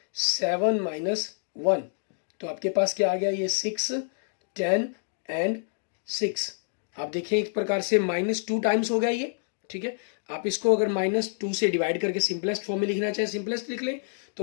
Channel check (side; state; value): right; silent; digital silence